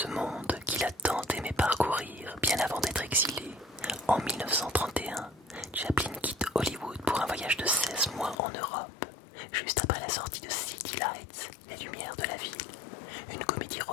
monde qu'il a tant aimé parcourir bien avant d'être exilé, en 1931, Chaplin quitte Hollywood pour un voyage de 16 mois en Europe, juste après la sortie de City Lights, Les Lumières de la Ville, une comédie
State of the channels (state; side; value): drops out; right; at 8.3 s